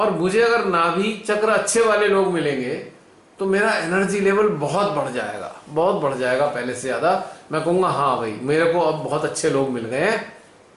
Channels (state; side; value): identical; both; correlation 1.00